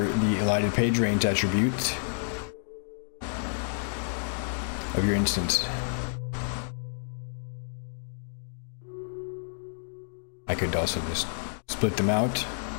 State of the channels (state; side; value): silent; right; digital silence